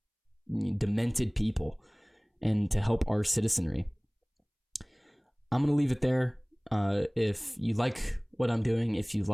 demented people and to help our citizenry? I'm going to leave it there. If you like what I'm doing, if you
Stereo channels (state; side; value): identical; both; correlation 1.00